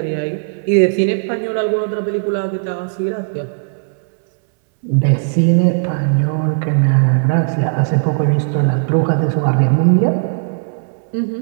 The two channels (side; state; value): left; silent; digital silence